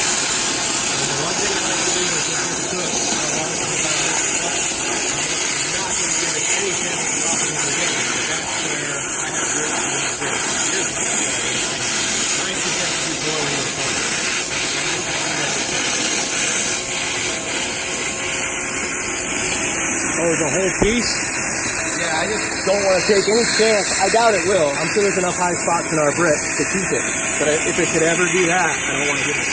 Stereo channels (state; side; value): identical; both; correlation 1.00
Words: Oh, the whole piece? Yeah, I just don't want to take any chance. I doubt it will. I'm sure there's enough high spots in our brick to keep it. But if it could ever do that, I don't want to give it a